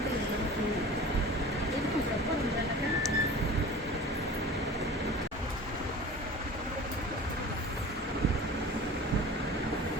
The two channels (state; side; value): normal; both; correlation 0.39